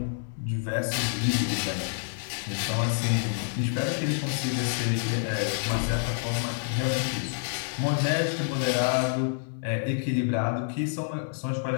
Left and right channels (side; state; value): right; silent; digital silence